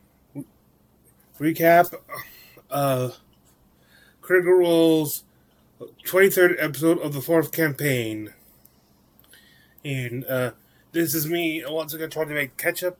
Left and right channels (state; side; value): identical; both; correlation 1.00